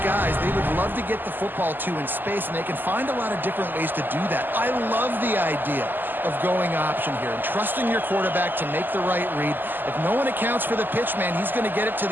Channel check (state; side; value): late; left; 0.090 ms